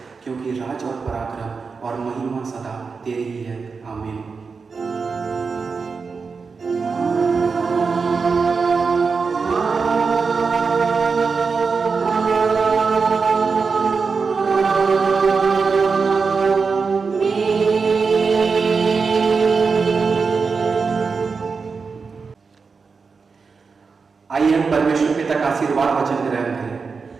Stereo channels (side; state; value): left; quieter; 5.0 dB